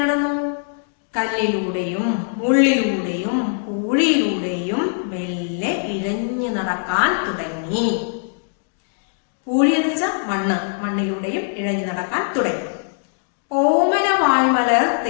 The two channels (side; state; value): right; silent; 65 dB below the other